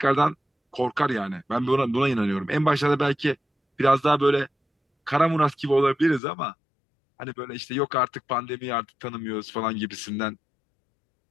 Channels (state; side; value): drops out; right; at 6.2 s